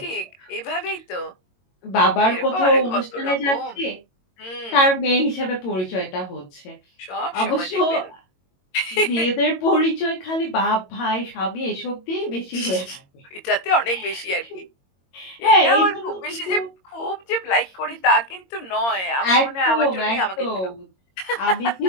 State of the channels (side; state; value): right; late; 22 ms